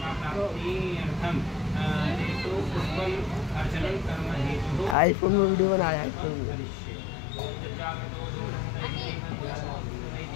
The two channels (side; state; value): right; drops out; at 5.0 s